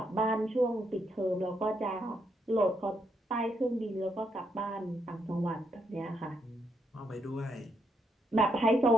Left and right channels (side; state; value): both; normal; correlation 0.77